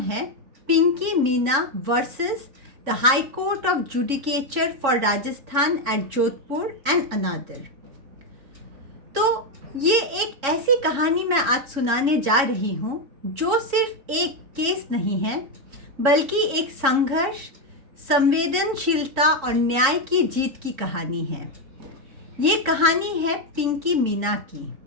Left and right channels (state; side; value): late; left; 3.6 ms